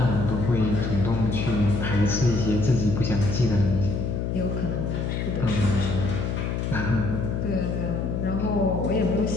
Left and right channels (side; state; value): left; noise; hum, 1 dB below the sound